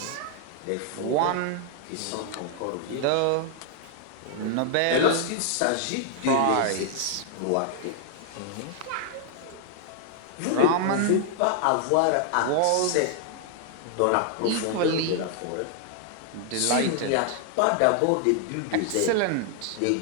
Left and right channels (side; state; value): both; different; correlation 0.00